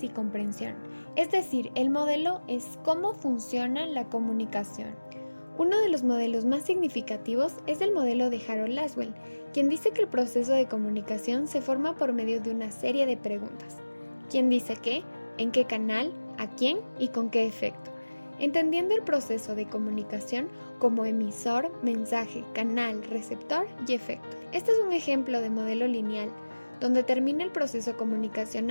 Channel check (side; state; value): both; inverted; correlation -1.00